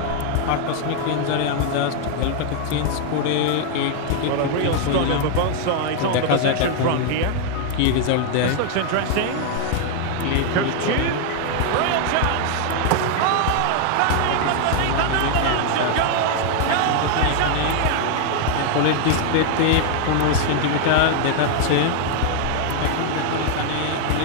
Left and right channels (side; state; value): both; different; correlation 0.00